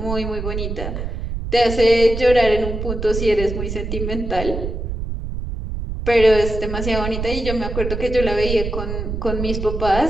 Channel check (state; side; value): noise; right; rumble, 5 dB below the sound